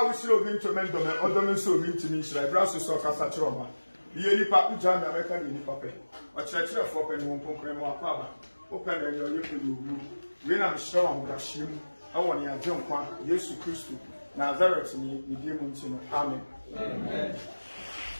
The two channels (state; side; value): inverted; both; correlation -1.00